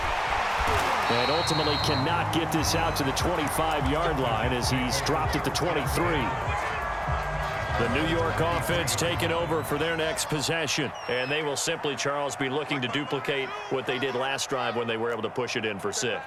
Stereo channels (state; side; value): identical; both; correlation 1.00